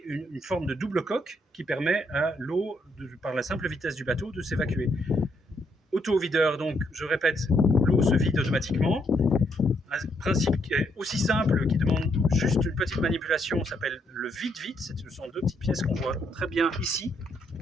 une forme de double coque qui permet à l'eau, par la simple vitesse du bateau, de s'évacuer. Auto-videur, donc je répète, l'eau se vide automatiquement. Un principe qui est aussi simple, qui demande juste une petite manipulation, s'appelle le vide-vide. Ce sont deux petites pièces qu'on voit très bien ici.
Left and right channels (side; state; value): both; normal; correlation 0.74